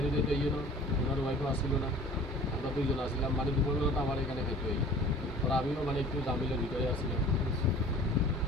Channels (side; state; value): both; normal; correlation 0.46